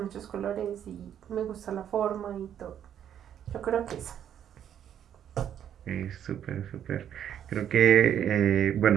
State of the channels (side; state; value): left; quieter; 9.7 dB